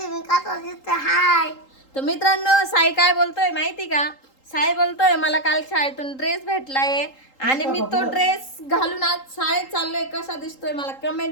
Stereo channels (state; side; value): late; right; 3.8 ms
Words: मी का दिसतो हाय. तर मित्रांनो साई काय बोलतोय माहिती का? साई बोलतोय मला काल शाळेतून ड्रेस भेटलाय आणि मी तो ड्रेस घालून आज शाळेत चाललोय. कसा दिसतोय मला